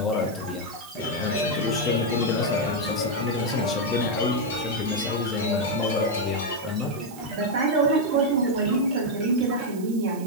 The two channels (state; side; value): noise; right; hiss, 18 dB below the sound